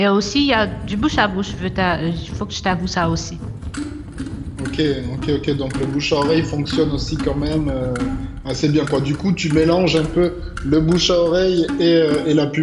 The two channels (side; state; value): both; identical; correlation 1.00